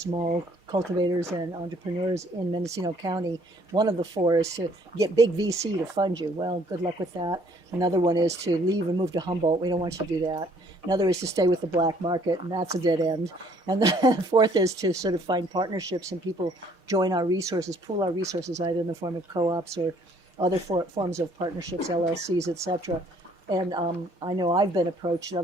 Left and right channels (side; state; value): both; normal; correlation 0.61